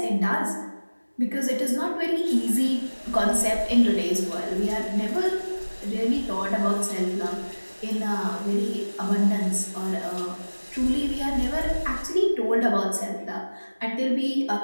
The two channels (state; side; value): inverted; both; correlation -1.00